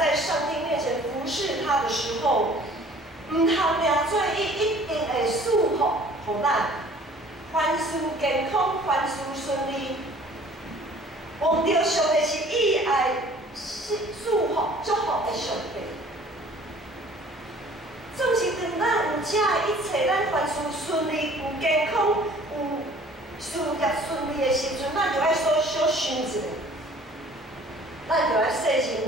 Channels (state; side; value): normal; both; correlation 0.52